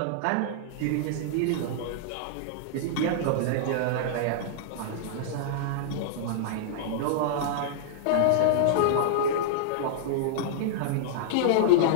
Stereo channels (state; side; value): different; both; correlation -0.02